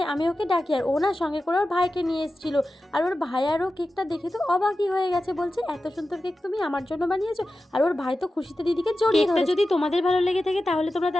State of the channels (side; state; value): both; normal; correlation 0.93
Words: আমি ওকে ডাকি, আর ও না সঙ্গে করে ওর ভাইকে নিয়ে এসেছিল, আর ওর ভাই আরও কেকটা দেখে তো অবাকই হয়ে গেছে, বলছে এত সুন্দর কেক তুমি আমার জন্য বানিয়েছো। আর ওর ভাই তো খুশিতে দিদিকে জড়িয়ে ধরেছে। যদি তোমাদের ভালো লেগে থাকে তাহলে তোমরা